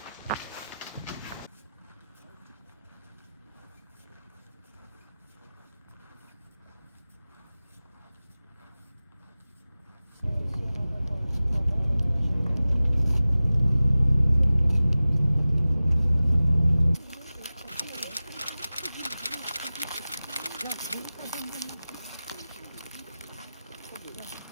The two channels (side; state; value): both; inverted; correlation -0.97